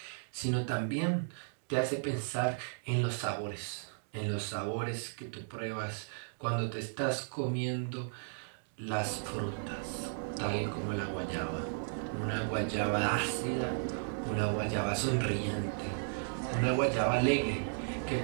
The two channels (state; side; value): silent; left; digital silence